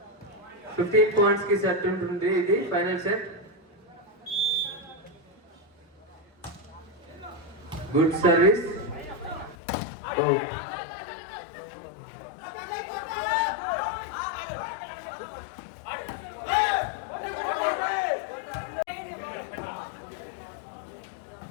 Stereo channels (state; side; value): drops out; right; at 9.6 s